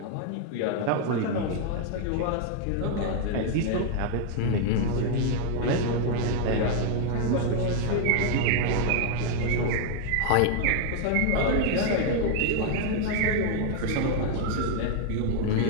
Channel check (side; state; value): both; different; correlation 0.00